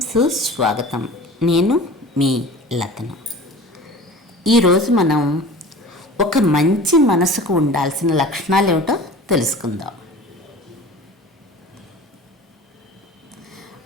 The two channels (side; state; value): both; normal; correlation 0.40